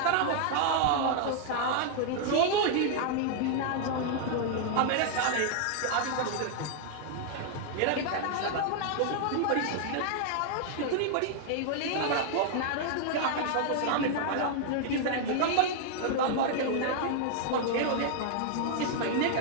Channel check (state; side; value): different; both; correlation -0.01